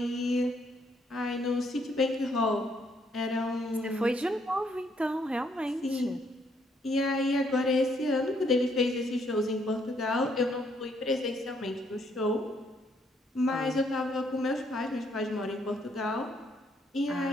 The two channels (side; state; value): both; normal; correlation 0.71